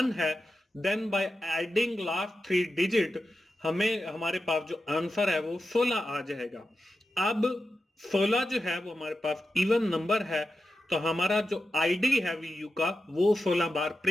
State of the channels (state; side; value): normal; both; correlation 0.91